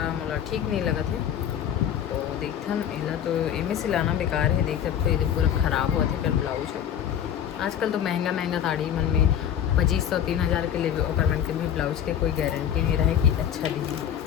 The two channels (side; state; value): right; quieter; 9.5 dB